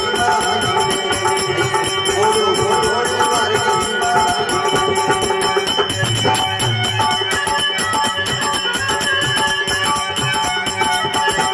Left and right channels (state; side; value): identical; both; correlation 1.00